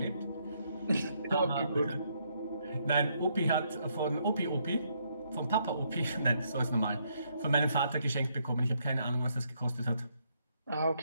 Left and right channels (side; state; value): both; inverted; correlation -0.73